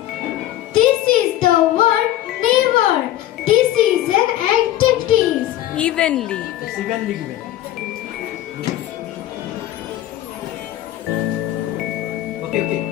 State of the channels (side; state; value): right; quieter; 13.7 dB